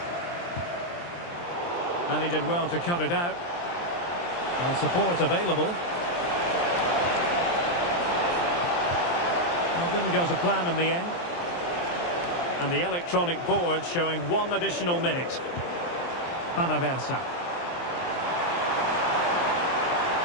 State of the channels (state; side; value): late; right; 23 ms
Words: And he did well to cut it out. And support available. Well, didn't go to plan in the end. And the electronic board showing 1 additional minute. Panaversa.